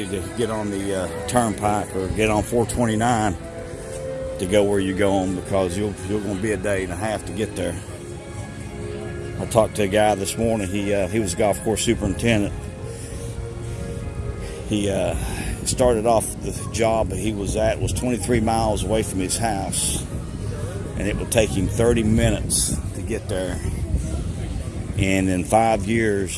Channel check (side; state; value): both; identical; correlation 1.00